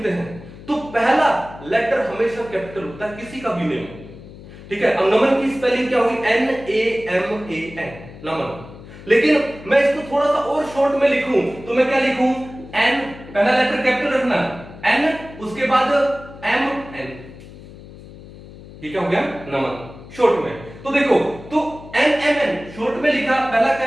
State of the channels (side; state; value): left; noise; hum, 17 dB below the sound